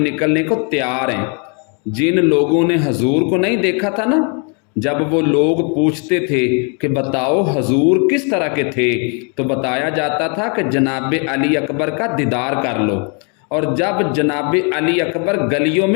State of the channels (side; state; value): right; quieter; 37.2 dB